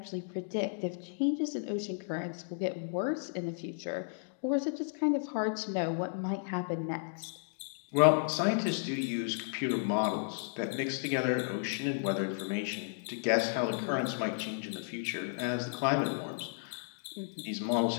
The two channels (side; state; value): right; silent; digital silence